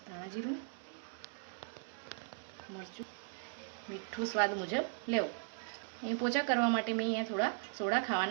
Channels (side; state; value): left; silent; 53 dB below the other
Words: ધાણા જીરું, મરચું, મીઠું સ્વાદ મુજબ લેવું. અહીં પોચા કરવા માટે મેં અહીંયા થોડા સોડા